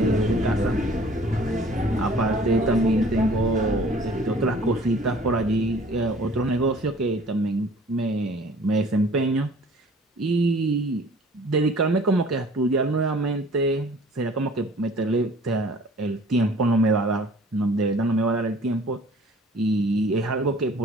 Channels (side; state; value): both; normal; correlation 0.51